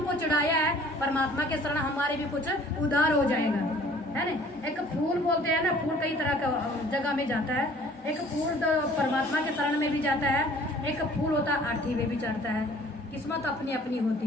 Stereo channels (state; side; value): normal; both; correlation 0.53